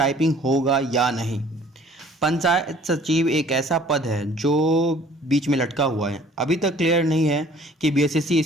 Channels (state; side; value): normal; both; correlation 0.53